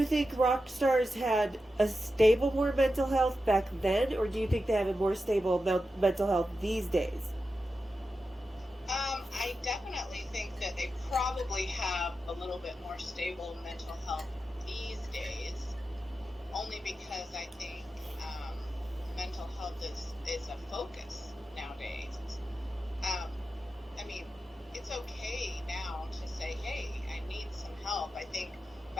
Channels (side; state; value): both; normal; correlation 0.91